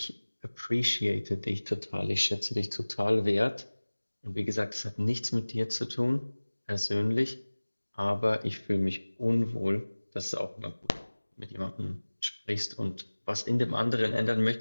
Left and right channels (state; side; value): inverted; both; correlation -1.00